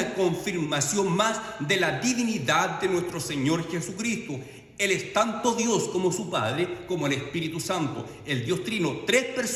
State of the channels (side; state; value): both; identical; correlation 1.00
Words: confirmación más de la divinidad de nuestro Señor Jesucristo. Él es tanto Dios como su Padre, como el Espíritu Santo. El Dios Trino, 3